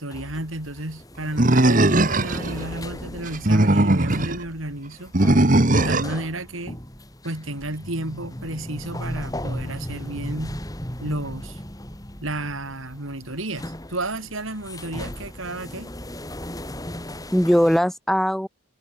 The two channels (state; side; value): normal; both; correlation 0.68